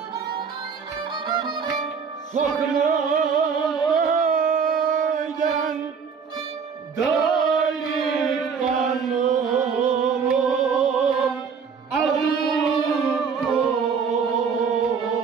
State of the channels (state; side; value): quieter; left; 6.0 dB